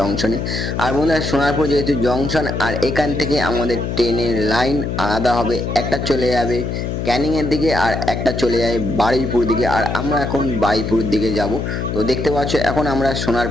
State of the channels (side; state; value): left; noise; hum, 3 dB below the sound